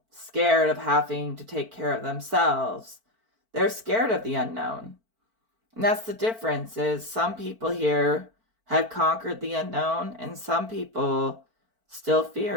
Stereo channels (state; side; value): late; left; 4.5 ms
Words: scared of having to take care of themselves. They're scared of the unknown. And that's the difference is some people here have conquered the unknown and some people still